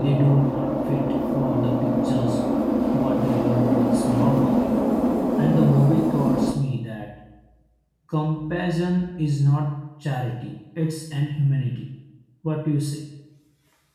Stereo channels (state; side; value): identical; both; correlation 1.00